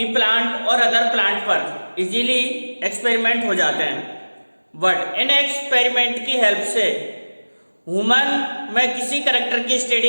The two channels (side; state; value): both; inverted; correlation -1.00